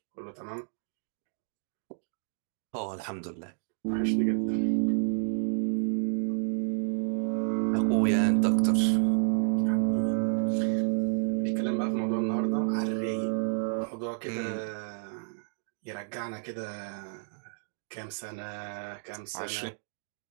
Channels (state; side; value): silent; left; digital silence